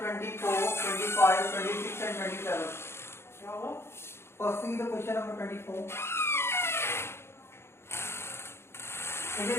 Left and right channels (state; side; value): late; right; 0.12 ms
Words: 25, 26 and 27. First see the question number 24. It